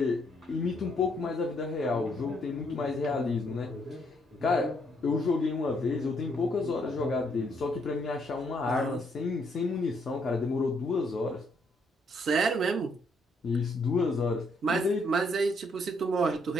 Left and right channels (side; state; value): both; normal; correlation 0.71